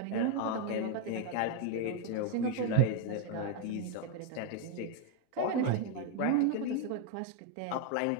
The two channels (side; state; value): both; different; correlation 0.01